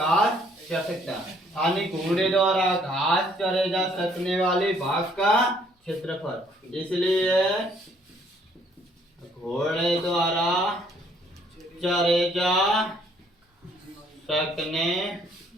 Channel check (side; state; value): both; normal; correlation 0.64